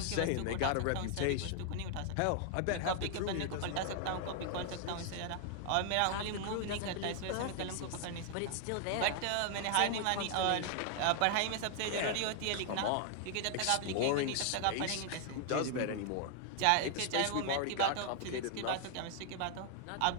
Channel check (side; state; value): both; different; correlation 0.00